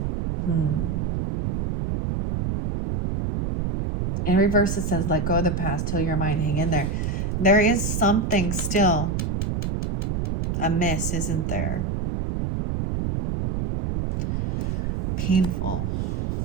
In reverse, it says, let go of the past, till your mind, hang in there. There is something still amiss, isn't there? Painful.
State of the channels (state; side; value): noise; right; rumble, 1 dB below the sound